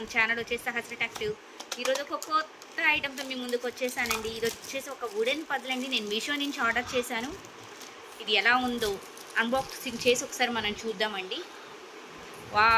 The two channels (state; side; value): identical; both; correlation 1.00